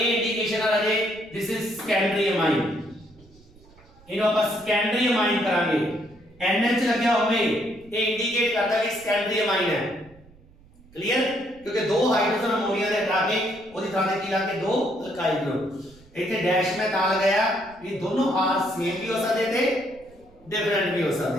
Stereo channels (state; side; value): noise; right; rumble, 26 dB below the sound